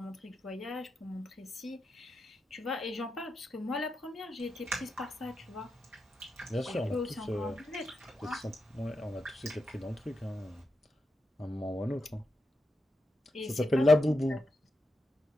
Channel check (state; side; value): normal; both; correlation 0.87